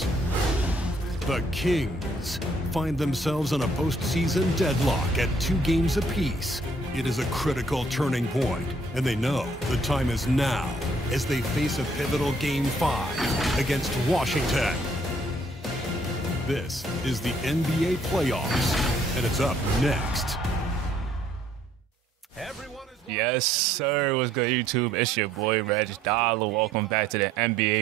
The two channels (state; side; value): normal; both; correlation 0.65